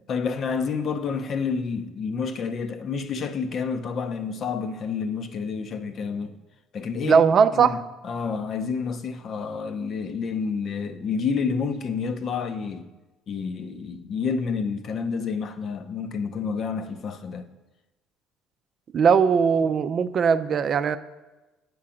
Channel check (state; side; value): normal; both; correlation 0.66